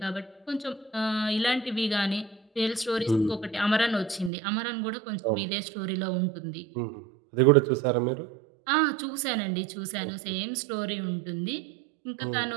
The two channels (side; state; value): left; drops out; at 4.3 s